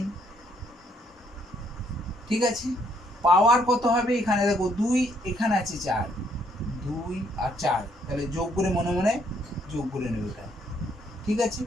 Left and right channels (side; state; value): both; normal; correlation 0.69